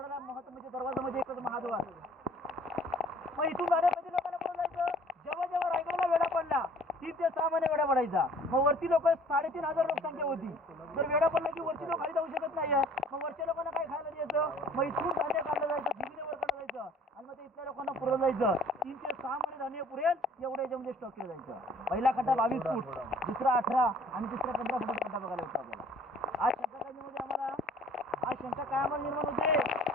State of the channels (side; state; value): both; normal; correlation 0.54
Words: महत्त्वाच्या दरवाजामध्ये एकच महाद्वार. मग इथून जाण्यासाठी लोकांना पुढे जायचं. जेव्हा रायगडला वेढा पडला 3 ते 6 महिने वेढा पडायचा. मग वरती लोक 3,500 लोकसंख्या होती. तर वेढा पडला की वरती लोक खाली जाऊ शकत नाही. मग वरच्या लोकांना काय खायला द्यायचं? मग इथून धान्य काढलं जायचं, दिल्लीला वर काढलं जायचं आणि मग ते इथल्या लोकांना पुरवलं जायचं. 3 ते 6 महिने धान्य पुरेल एवढ्या याच्यामध्ये स्टॉक केलं जायचं. पहिला खड्डा 22 फूट, दुसरा 18 आणि तिसरा 15 फुटाचा खड्डा बघायला होता आपल्याला. आज शंका काय आम्हाला निर्माण होते?